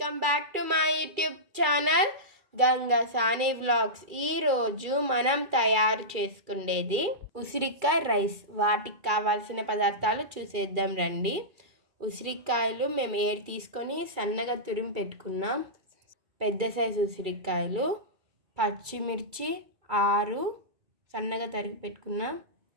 back to my YouTube channel Ganga Sani vlogs. ఈరోజు మనం తయారు చేసుకునేది ఉసిరికాయ రైస్. వాటికి కావాల్సిన పదార్థాలు చూసేద్దాం రండి. ఉసిరికాయలు మేము 7 తీసుకొని సన్నగా తురిమి పెట్టుకున్నాం. పెద్ద సైజు ఉసిరికాయలు, పచ్చిమిర్చి 6 సన్నగా తరిగి పెట్టుకున్నాం.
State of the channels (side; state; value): left; late; 2.3 ms